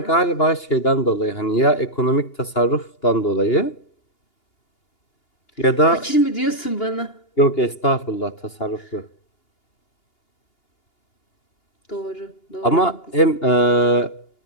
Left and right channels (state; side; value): late; right; 2.8 ms